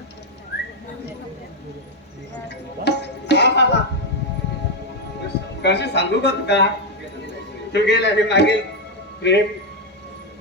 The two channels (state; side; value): normal; both; correlation 0.04